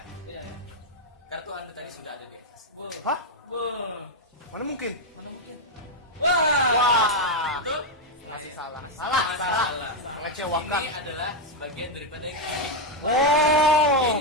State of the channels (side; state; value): both; normal; correlation 0.02